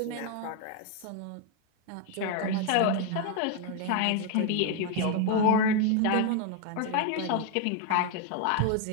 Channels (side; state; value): both; different; correlation 0.01